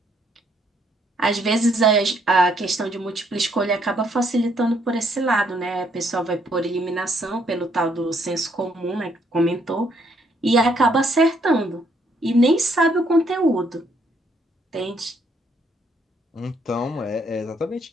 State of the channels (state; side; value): normal; both; correlation 0.70